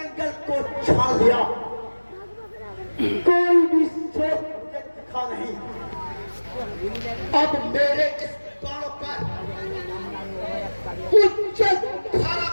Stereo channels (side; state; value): both; inverted; correlation -1.00